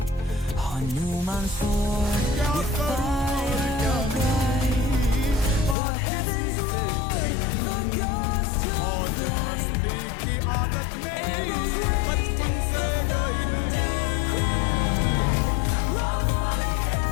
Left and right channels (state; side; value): drops out; right; at 5.8 s